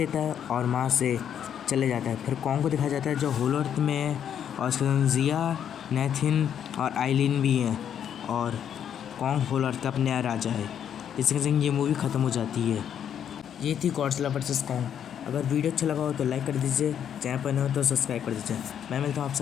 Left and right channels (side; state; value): right; quieter; 9.0 dB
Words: है और वहाँ से चले जाता है। फिर कॉन्ग को दिखाया जाता है जो होलो अर्थ में है और उसके साथ जिया, नेथिन और आइलिन भी हैं और कॉन्ग होलो अर्थ का अब नया राजा है। इसके संग ये मूवी ख़त्म हो जाती है। ये थी गॉडजिला वर्सेस कॉन्ग। अगर वीडियो अच्छा लगा हो तो लाइक कर दीजिए, चैनल पर नए हो तो सब्सक्राइब कर दीजिए। मैं मिलता हूँ